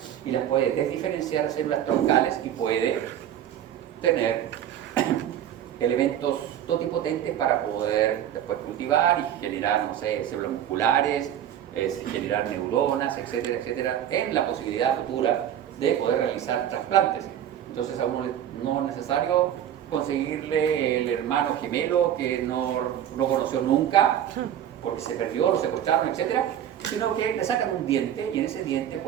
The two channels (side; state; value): left; quieter; 10.6 dB